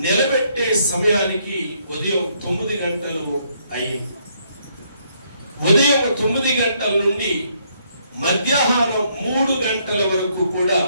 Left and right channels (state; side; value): inverted; both; correlation -0.71